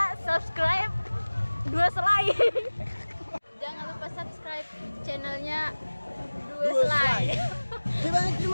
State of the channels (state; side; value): inverted; both; correlation -1.00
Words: subscribe Dua Selai. Jangan lupa subscribe channelnya Dua Selai.